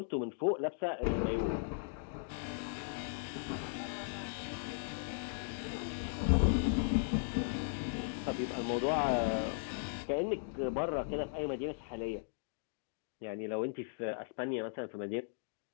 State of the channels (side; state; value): right; silent; digital silence